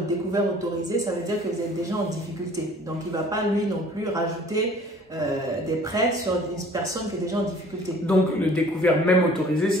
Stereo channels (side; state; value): both; normal; correlation 0.52